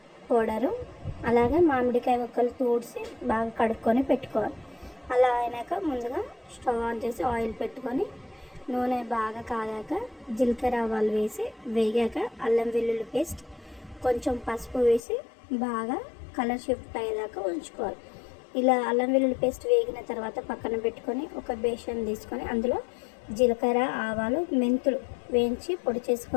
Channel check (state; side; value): drops out; right; at 15.0 s